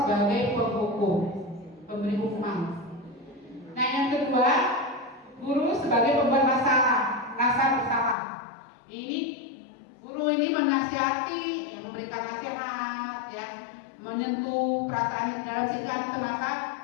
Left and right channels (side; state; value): right; drops out; at 8.2 s